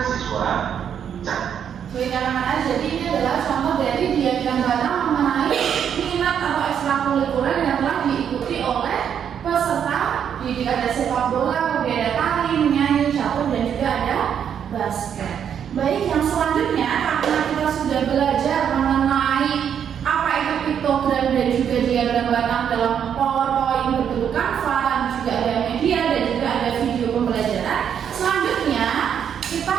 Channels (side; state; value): left; quieter; 8.4 dB